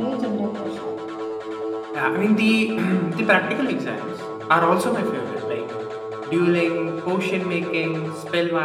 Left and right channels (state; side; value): identical; both; correlation 1.00